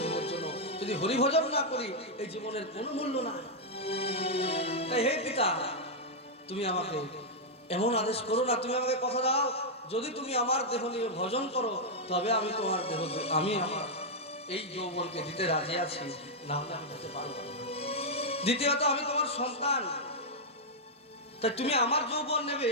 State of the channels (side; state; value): both; normal; correlation -0.04